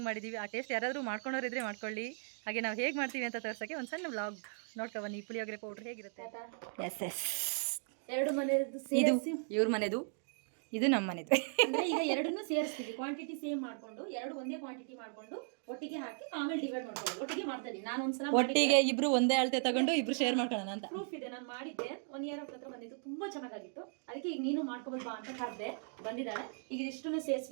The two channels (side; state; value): left; silent; 53 dB below the other